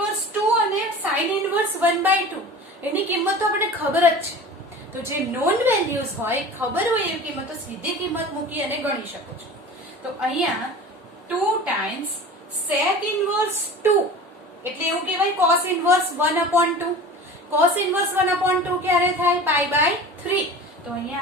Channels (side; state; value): both; normal; correlation 0.37